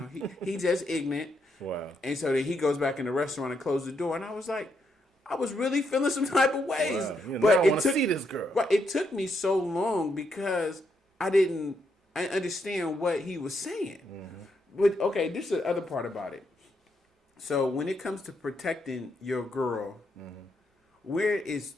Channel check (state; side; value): normal; both; correlation 0.78